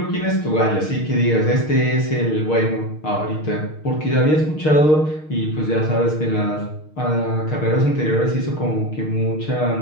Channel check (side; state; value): right; late; 6.5 ms